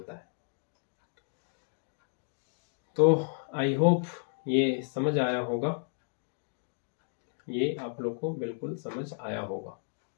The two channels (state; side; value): silent; right; digital silence